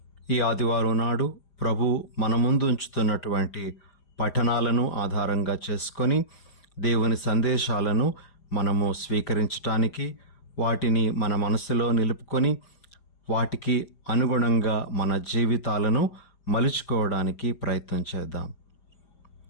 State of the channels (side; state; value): right; late; 4.9 ms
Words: ఈ ఆదివారం నాడు ప్రభు మన ముందు ఉంచుతున్నటువంటి పఠనాలను ఆధారంగా చేసుకొని దేవుని సందేశాలను మనము స్వీకరించటానికి, వాటిని మన మనసులో నిలుపుకొని వాటికి అనుగుణంగా మన జీవితాలను మలుచుకోవడానికి ప్రయత్నం చేద్దాం.